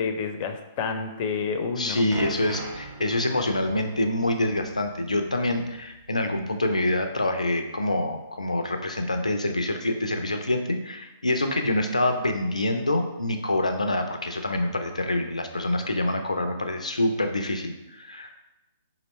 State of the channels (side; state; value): both; inverted; correlation -0.75